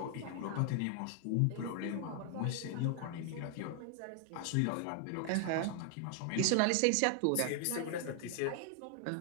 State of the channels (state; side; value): different; both; correlation 0.00